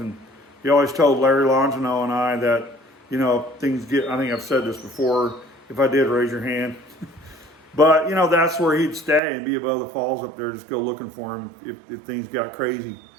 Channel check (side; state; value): left; drops out; at 9.2 s